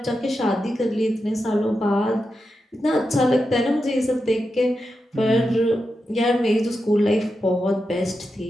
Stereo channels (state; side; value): normal; both; correlation 0.88